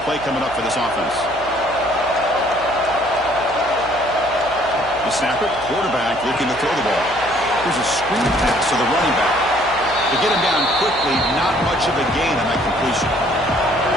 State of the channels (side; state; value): left; noise; hum, 20 dB below the sound